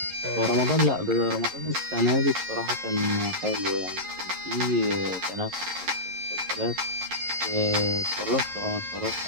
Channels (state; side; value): late; left; 11 ms